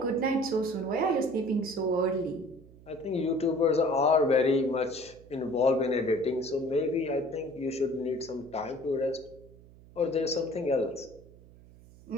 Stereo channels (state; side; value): noise; right; hum, 22 dB below the sound